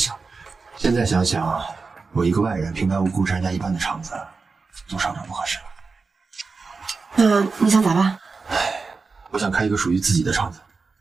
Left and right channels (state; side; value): quieter; left; 4.4 dB